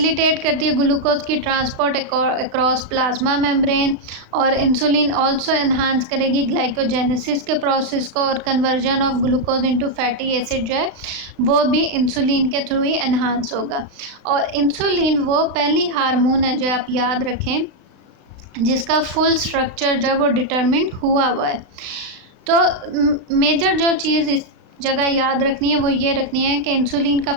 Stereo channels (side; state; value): left; late; 36 ms